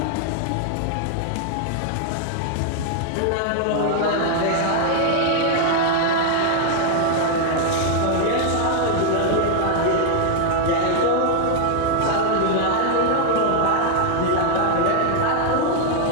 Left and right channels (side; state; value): both; different; correlation 0.00